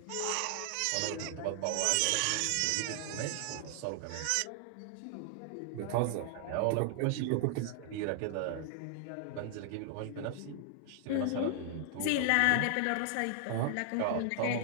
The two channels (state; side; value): different; both; correlation 0.00